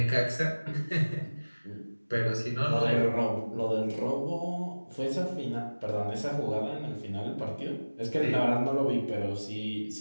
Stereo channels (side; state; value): both; inverted; correlation -1.00